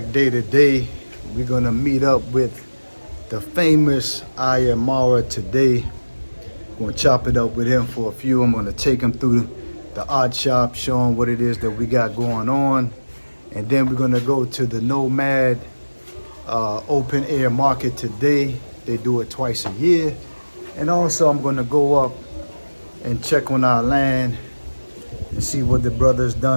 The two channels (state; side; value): inverted; both; correlation -1.00